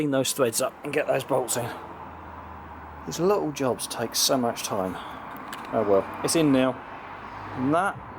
those threads up and get those bolts in. These little jobs take so much time. Oh well, it's in now, and that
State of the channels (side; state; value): both; identical; correlation 1.00